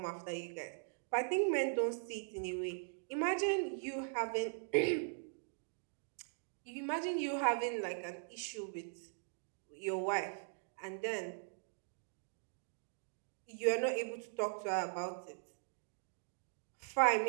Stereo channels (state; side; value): silent; left; digital silence